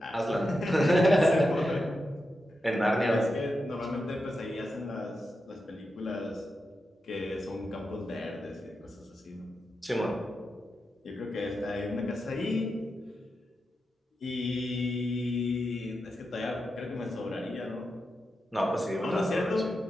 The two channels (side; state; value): both; normal; correlation 0.88